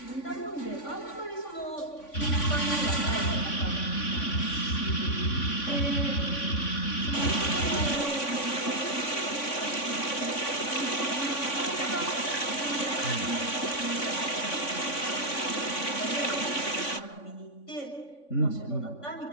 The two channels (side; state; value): right; late; 3.5 ms